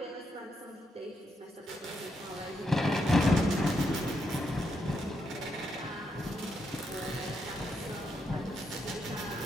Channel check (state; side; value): normal; both; correlation 0.80